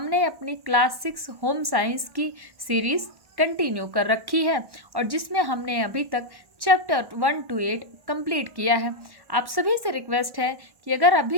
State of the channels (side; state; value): left; late; 1.1 ms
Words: अपनी क्लास 6 होम साइंस की सीरीज़ कंटिन्यू कर रखी है और जिसमें हमने अभी तक चैप्टर 1 to 8 कंप्लीट किया है। आप सभी से रिक्वेस्ट है कि अगर